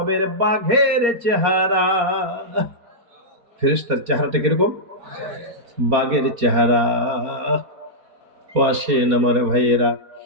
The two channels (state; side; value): late; left; 4.2 ms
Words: বাঘের চেহারা। ফেরেশতার চেহারাটা কিরকম? বাঘের চেহারা। ও আসেন আমার ভাইয়েরা,